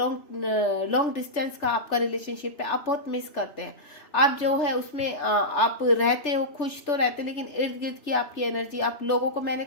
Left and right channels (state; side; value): late; right; 3.4 ms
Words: डिस्टेंस का आपका रिलेशनशिप है। आप बहुत मिस करते हैं। आप जो है उसमें आप रहते हो, खुश तो रहते, लेकिन इर्द गिर्द की आपकी एनर्जी, आप लोगों को, मैंने